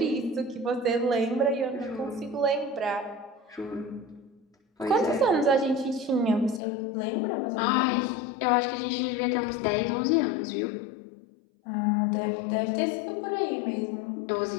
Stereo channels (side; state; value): right; drops out; at 6.6 s